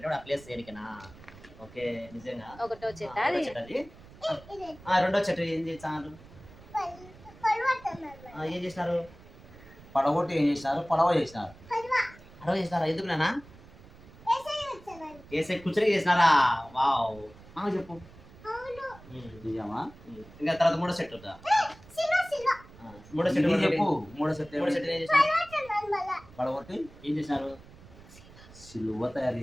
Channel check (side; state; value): right; noise; rumble, 21 dB below the sound